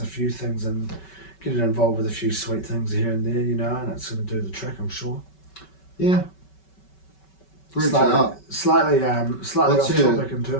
few things and get it involved with a few sweet things here and there, and it's going to do the trick, I'm sure. Yeah. Slightly off topic in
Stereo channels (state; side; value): late; right; 5.3 ms